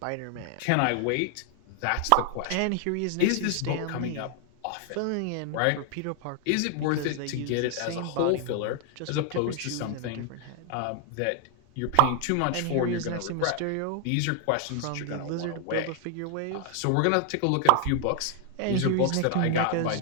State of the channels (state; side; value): different; both; correlation 0.00